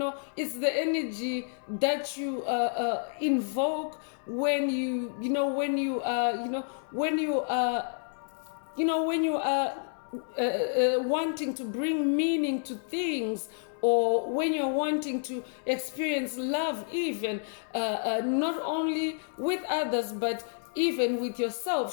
the energy that you invoke when you are wanting to bring meaning to things, or when you're wanting to experience love, even not only with others but even with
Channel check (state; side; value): silent; right; digital silence